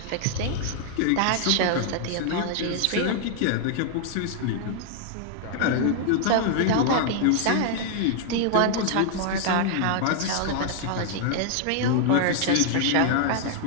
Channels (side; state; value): both; different; correlation 0.00